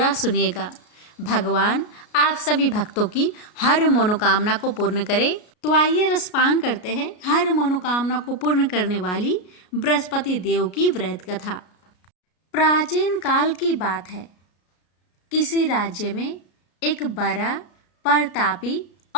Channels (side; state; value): right; late; 33 ms